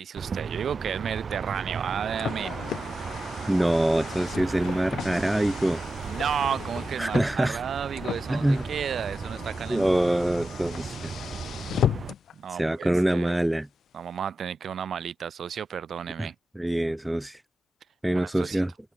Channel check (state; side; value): normal; both; correlation 0.91